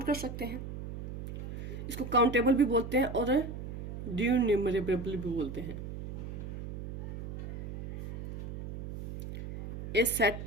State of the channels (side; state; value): right; noise; hum, 8 dB below the sound